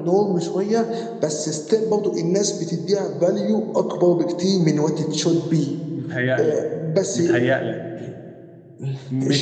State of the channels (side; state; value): both; identical; correlation 1.00